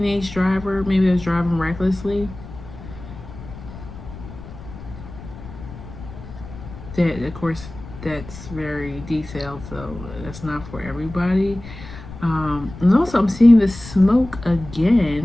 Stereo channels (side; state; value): left; noise; rumble, 14 dB below the sound